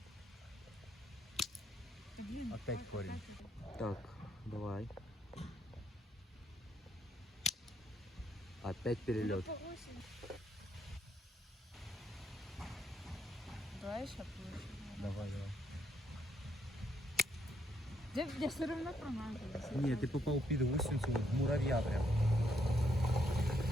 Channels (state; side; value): normal; both; correlation 0.74